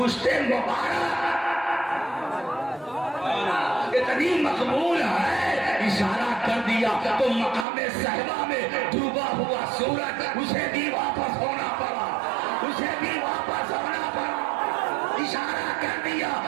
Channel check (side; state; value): left; drops out; at 7.7 s